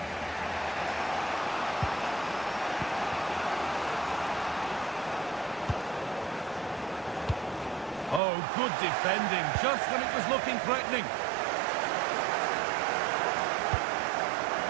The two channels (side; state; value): left; drops out; at 8.2 s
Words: Oh, good defending, just when it was looking threatening.